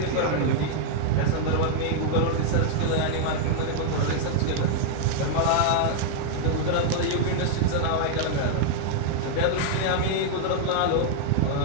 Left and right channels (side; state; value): both; different; correlation -0.01